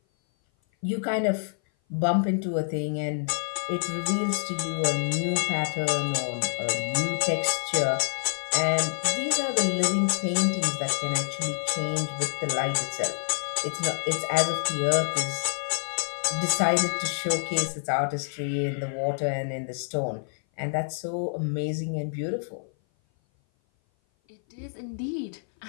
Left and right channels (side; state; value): right; silent; 56 dB below the other